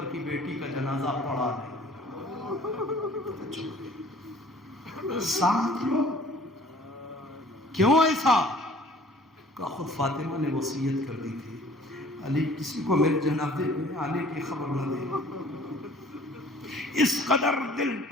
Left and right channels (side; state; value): both; normal; correlation 0.52